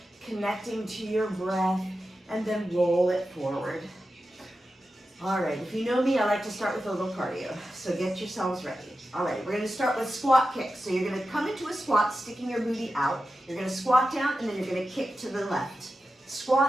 connecting to your breath, and then roll it forward. All right, if you know me, I like to start with a little cardio, so get yourselves ready. All right, we're gonna start with squat kicks. So you're gonna come into a squat, sticking your booty out. You're gonna squat down, and then you're gonna kick to the left.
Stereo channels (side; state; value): both; normal; correlation 0.92